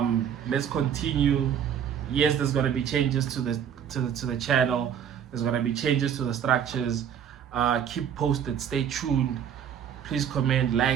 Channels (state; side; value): quieter; left; 8.6 dB